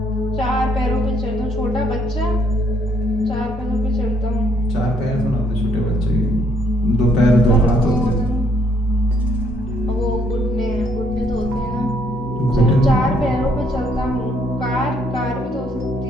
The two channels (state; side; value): normal; both; correlation 0.68